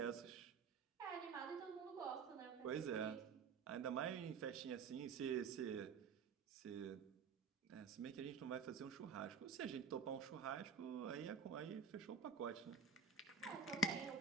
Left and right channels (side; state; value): left; quieter; 5.4 dB